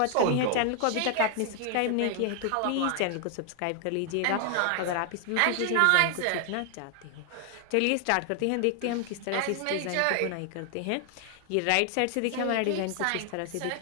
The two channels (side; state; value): both; different; correlation 0.00